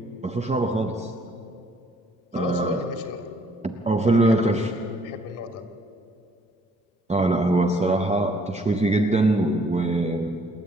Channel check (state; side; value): normal; both; correlation 0.64